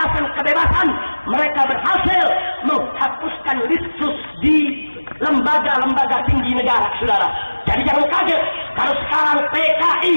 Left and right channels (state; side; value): inverted; both; correlation -1.00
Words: kebebasan. Mereka berhasil menghapuskan litsus di lembaga-lembaga tinggi negara, saudara. Jadi jangan kaget kalau sekarang PKI